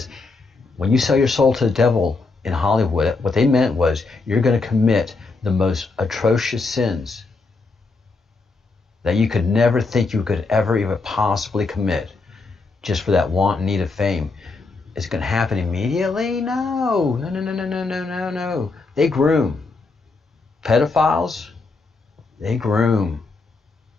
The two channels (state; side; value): quieter; right; 3.9 dB